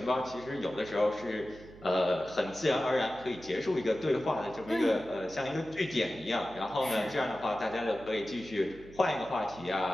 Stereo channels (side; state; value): right; noise; hum, 19 dB below the sound